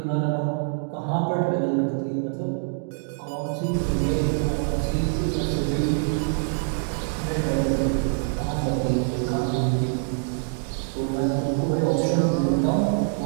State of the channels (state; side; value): silent; left; digital silence